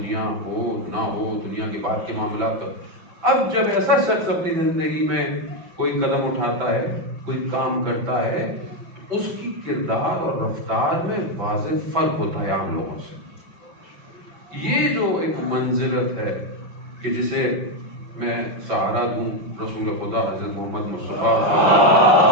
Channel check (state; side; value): late; left; 6.0 ms